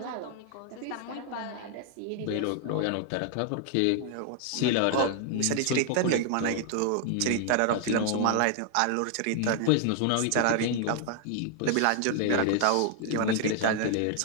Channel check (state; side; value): different; both; correlation 0.00